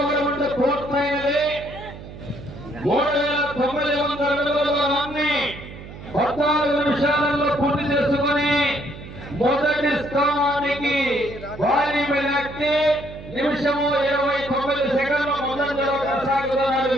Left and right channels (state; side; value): noise; right; hum, 14 dB below the sound